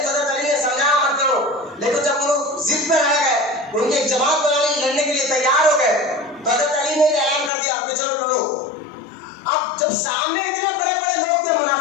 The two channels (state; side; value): drops out; right; at 7.5 s